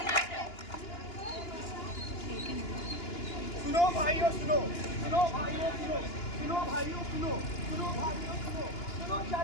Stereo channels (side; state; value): right; late; 2.9 ms